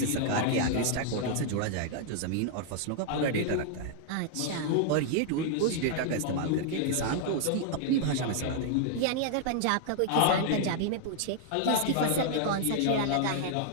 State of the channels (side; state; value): both; different; correlation -0.01